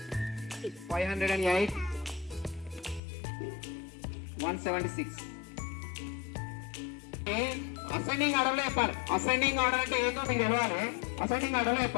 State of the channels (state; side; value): drops out; right; at 3.0 s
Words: 508, 176. Ascending order లో చెప్పాలి. Ascending order అంటే ఏంటో మీకు తెలవాలి. Ascending order లో